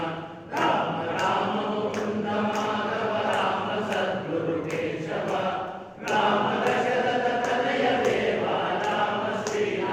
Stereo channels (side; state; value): both; identical; correlation 1.00